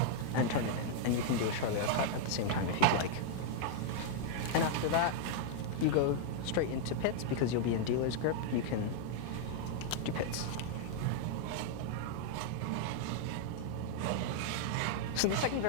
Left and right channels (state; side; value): different; both; correlation -0.01